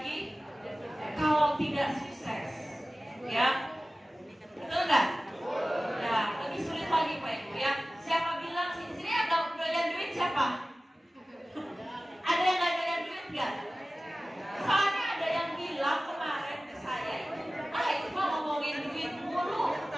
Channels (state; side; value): normal; both; correlation 0.97